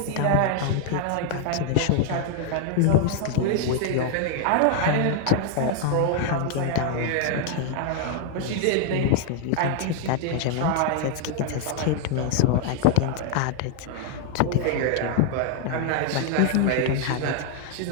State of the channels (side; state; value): both; different; correlation 0.00